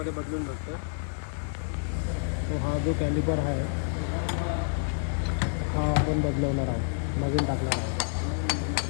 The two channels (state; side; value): silent; right; 59 dB below the other